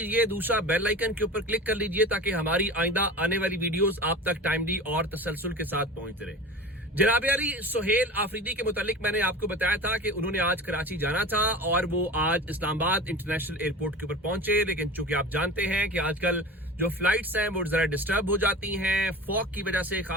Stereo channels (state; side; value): normal; both; correlation 0.34